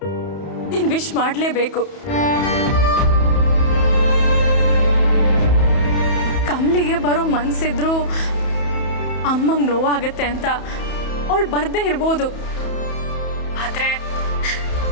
ನೀನ್ ವಿಶ್ ಮಾಡ್ಲೇಬೇಕು. ಕಮ್ಲಿಗೆ ಬರೋ ಮನ್ಸಿದ್ರು ಅಮ್ಮಂಗ್ ನೋವಾಗತ್ತೆ ಅಂತ ಅವಳು ಬರ್ದೇ ಇರ್ಬೋದು. ಆದ್ರೆ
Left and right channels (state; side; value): late; right; 31 ms